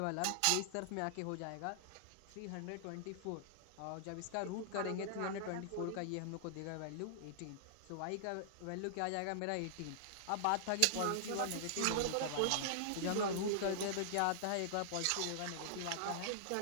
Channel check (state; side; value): different; both; correlation -0.01